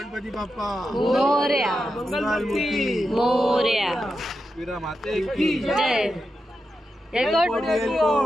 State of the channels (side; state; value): both; normal; correlation 0.88